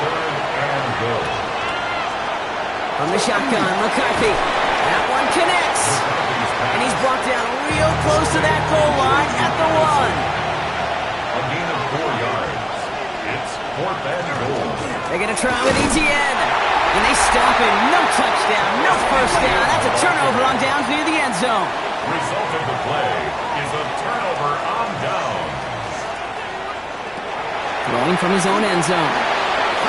and goal. From the shotgun, McCarthy. That one connects. And he's brought down real close to that goal line at the 1. A gain of 4 yards. It's fourth and goal. They're going to try with Etienne. And they stop him. No touchdown, no first down. That's a turnover on down near the end zone. Result of the play is a turnover on down. Throwing from his own end zone.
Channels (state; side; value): identical; both; correlation 1.00